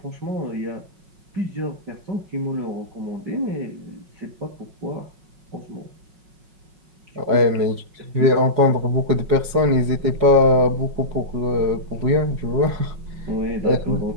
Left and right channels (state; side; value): late; left; 5.4 ms